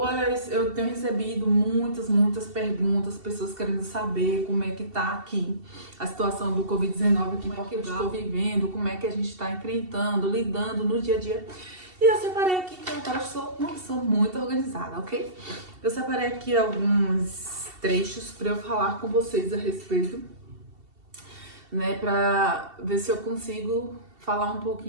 eu tenho recebido muitas perguntas, pessoas querendo saber como é que tá aqui a situação do Covid-19 aqui em Portugal, que eu estou vivendo, como é que a gente está enfrentando, lidando no dia a dia. E eu separei aqui, que eu agora sou uma pessoa muito organizada, ok? Eu separei aqui alguns trechos para eu falar com vocês a respeito, né, para ver se eu consigo falar um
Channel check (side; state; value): left; late; 2.7 ms